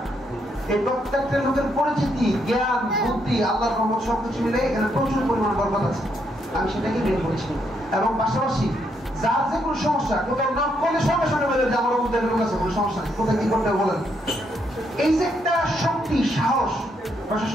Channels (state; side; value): normal; both; correlation 0.76